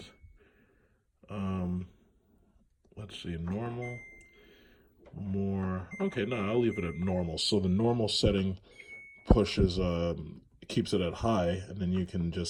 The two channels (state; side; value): identical; both; correlation 1.00